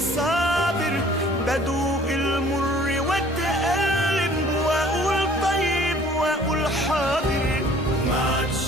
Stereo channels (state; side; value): normal; both; correlation 0.53